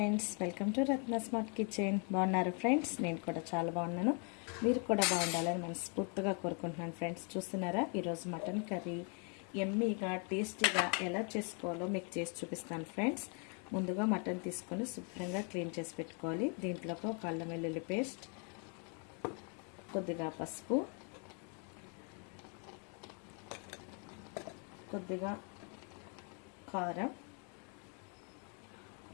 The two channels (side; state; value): right; quieter; 38.1 dB